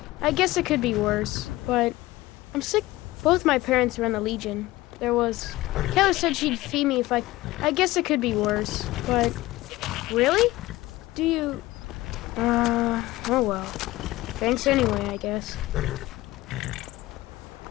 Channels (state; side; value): quieter; right; 18.1 dB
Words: I guess it could be worse, but I'm sick. Both my parents were in the Legion. There was. Keller said she'd feed me if I. I guess it could be worse, but. Really? Do you. Oh well. Thanks anyway, I guess.